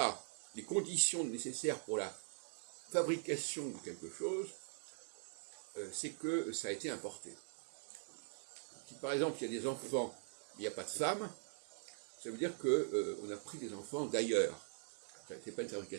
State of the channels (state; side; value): silent; left; digital silence